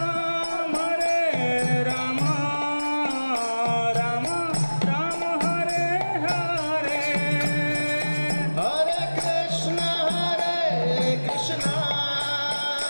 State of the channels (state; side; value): inverted; both; correlation -1.00